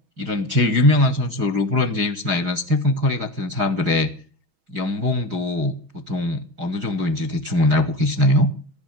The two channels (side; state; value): left; late; 6.2 ms